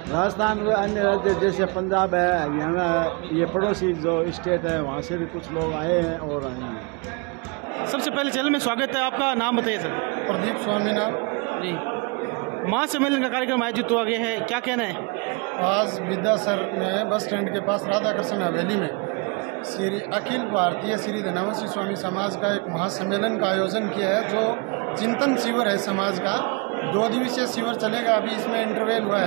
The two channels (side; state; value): left; quieter; 30.8 dB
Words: राजस्थान में अन्य राज्य जैसे पंजाब है, हरियाणा है, ये पड़ोसी जो स्टेट है, वहाँ से भी कुछ लोग आए हैं और आए हैं। सबसे पहले चैनल में स्वागत है, आपका नाम बताइए सर। प्रदीप स्वामी नाम जी। महासम्मेलन का कार्यक्रम आयोजित हुआ गया है, क्या कहना है? आज विद्यासर में बस स्टैंड के पास राधा कृष्ण हवेली में श्री अखिल भारतीय श्री धनावंशी स्वामी समाज का एक महासम्मेलन का आयोजन किया है, जो चिंतन शिविर है समाज का। 2 दिवसीय शिविर चलेगा, अभी इसमें इंटरवेल हुआ